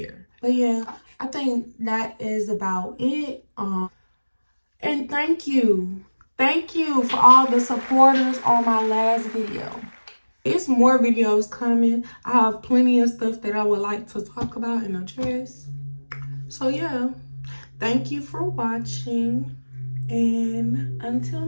But yeah, I think that is about it. And thank you for all the supporters on my last video. It's more videos coming. I have plenty of stuff that I would like to talk about and address. So yeah, thank you for watching. And until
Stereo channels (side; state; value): both; inverted; correlation -1.00